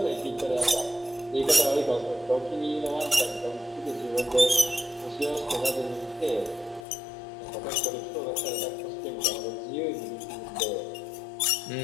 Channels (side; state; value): right; drops out; at 6.9 s